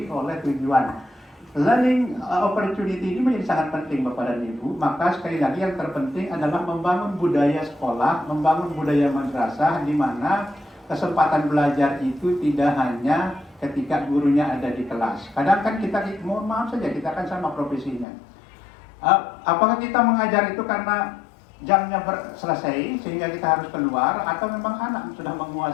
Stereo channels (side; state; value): right; drops out; at 18.1 s